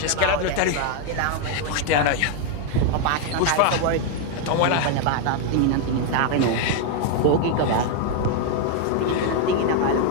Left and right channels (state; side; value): different; both; correlation 0.01